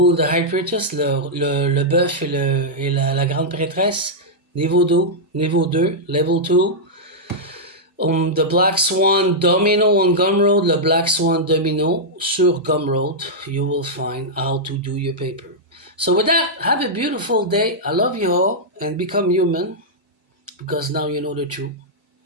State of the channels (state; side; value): normal; both; correlation -0.08